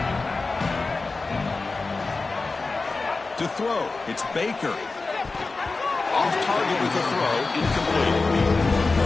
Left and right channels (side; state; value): right; quieter; 3.8 dB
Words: To throw, it's Baker. Off target with a throw, incomplete.